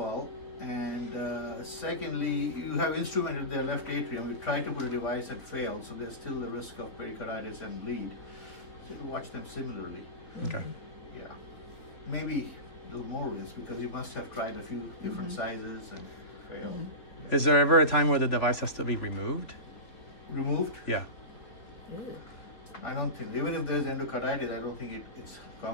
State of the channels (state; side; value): late; right; 3.8 ms